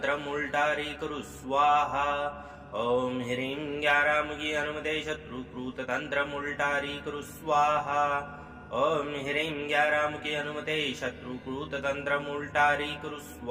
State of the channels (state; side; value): identical; both; correlation 1.00